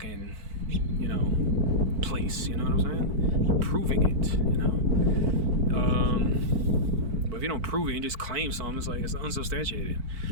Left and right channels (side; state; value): left; late; 4.5 ms